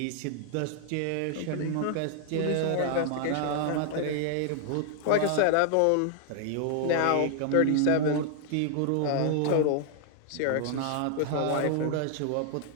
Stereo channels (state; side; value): different; both; correlation 0.00